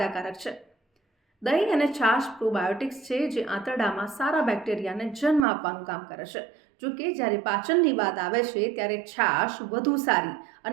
છે। દહીં અને છાશ પ્રોબાયોટિક્સ છે, જે આંતરડામાં સારા બેક્ટેરિયાને જન્મ આપવાનું કામ કરે છે। જો કે જ્યારે પાચનની વાત આવે છે ત્યારે છાશ વધુ સારી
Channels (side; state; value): left; drops out; at 5.5 s